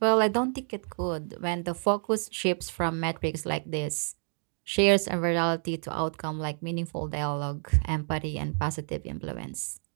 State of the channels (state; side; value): silent; left; 59 dB below the other